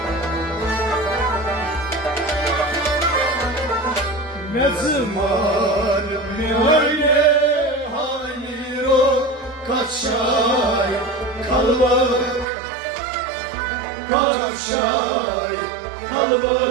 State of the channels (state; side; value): drops out; left; at 12.5 s